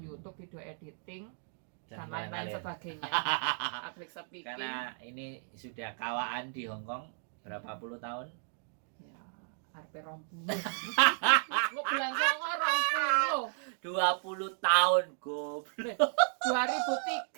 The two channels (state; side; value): silent; left; 55 dB below the other